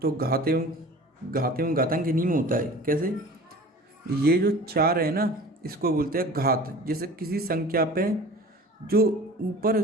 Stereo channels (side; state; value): both; normal; correlation 0.41